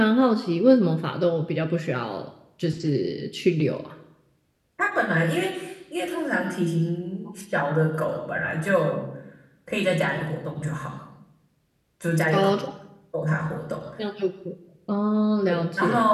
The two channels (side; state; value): both; identical; correlation 1.00